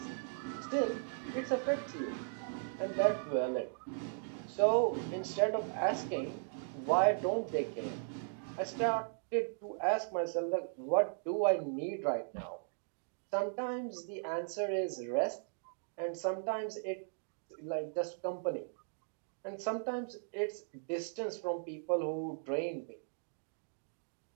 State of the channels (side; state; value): left; silent; digital silence